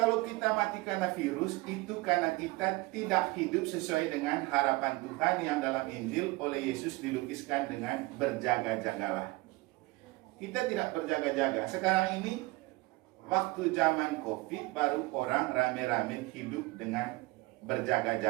kita mati karena virus, itu karena kita tidak hidup sesuai dengan harapan Tuhan yang dalam Injil oleh Yesus dilukiskan dengan berjaga-jagalah. Kita tidak berjaga-jaga. Sekarang ini waktu zaman COVID baru orang rame-rame hidup dengan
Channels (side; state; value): left; quieter; 22.3 dB